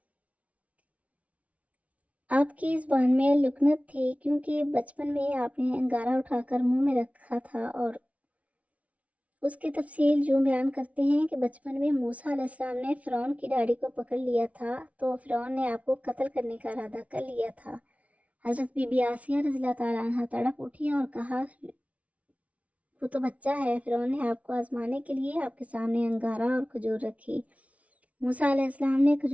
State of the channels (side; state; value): left; late; 0.066 ms